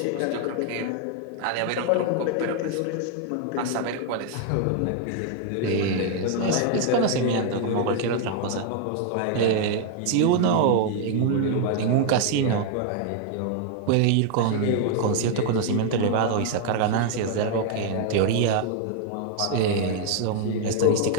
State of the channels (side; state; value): both; different; correlation 0.00